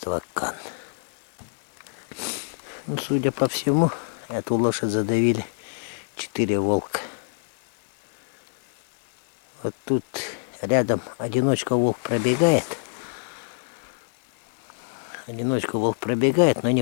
Кан. Ну, судя по всему, эту лошадь задавили 4 волка. Вот тут рядом одиночка волк пробегает. Но не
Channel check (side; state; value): right; silent; digital silence